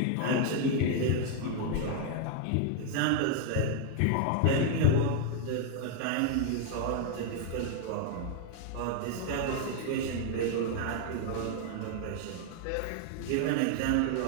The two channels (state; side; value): different; both; correlation 0.00